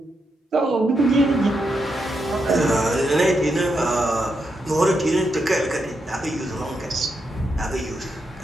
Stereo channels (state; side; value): normal; both; correlation 0.83